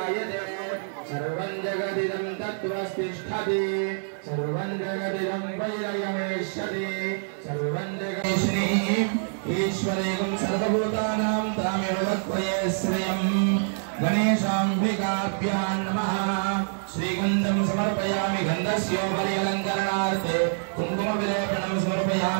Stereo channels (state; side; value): silent; left; digital silence